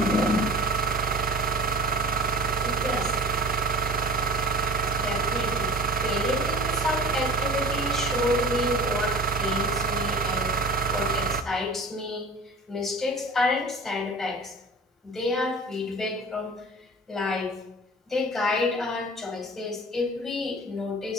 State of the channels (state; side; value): normal; both; correlation 0.40